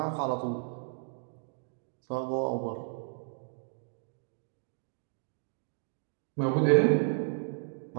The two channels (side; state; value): left; silent; digital silence